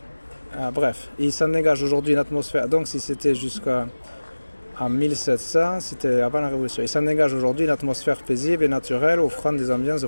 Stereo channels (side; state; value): both; inverted; correlation -1.00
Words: Bref, il s'en dégage aujourd'hui une atmosphère, donc si c'était jusqu'à 1700, c'était avant la Révolution. Il s'en dégage aujourd'hui une atmosphère paisible et naturelle, offrant des ambiances